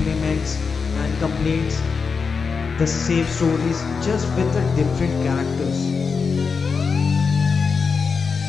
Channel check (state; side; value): quieter; right; 5.3 dB